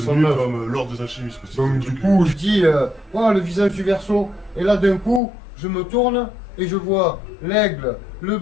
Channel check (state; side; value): drops out; right; at 5.2 s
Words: 69. comme l'ordre des alchimistes. Donc du coup, je dis, oh, le visage du Verseau. Et là, d'un coup, je me tourne et je vois l'aigle, le